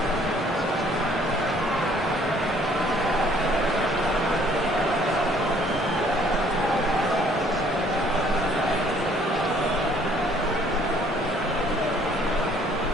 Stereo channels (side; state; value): both; normal; correlation 0.60